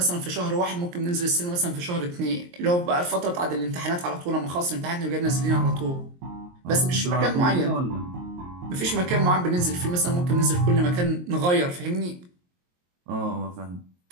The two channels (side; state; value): left; late; 23 ms